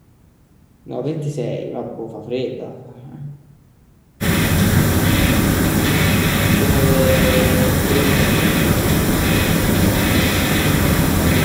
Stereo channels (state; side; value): identical; both; correlation 1.00